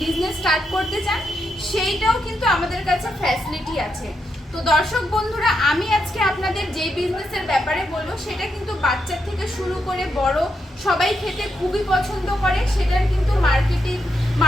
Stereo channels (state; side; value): normal; both; correlation 0.82